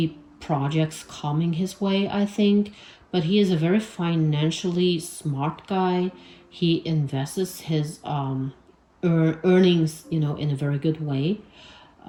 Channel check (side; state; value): both; identical; correlation 1.00